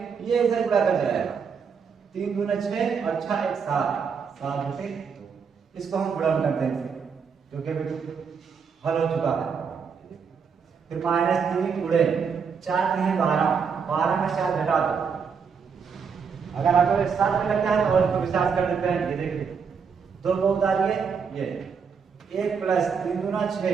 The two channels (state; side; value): quieter; left; 6.1 dB